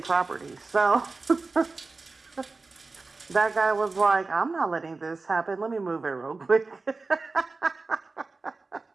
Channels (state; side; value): quieter; left; 3.8 dB